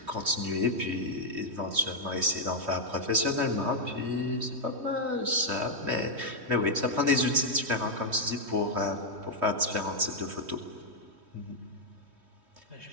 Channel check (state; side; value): late; left; 3.1 ms